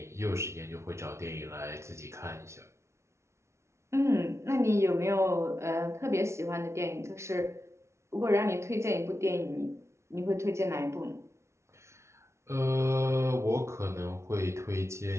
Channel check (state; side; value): late; left; 0.13 ms